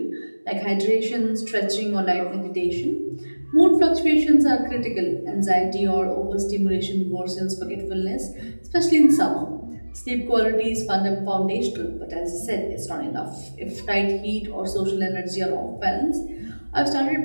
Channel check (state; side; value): inverted; both; correlation -1.00